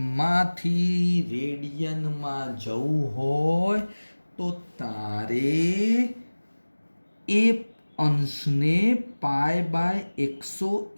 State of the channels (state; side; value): inverted; both; correlation -1.00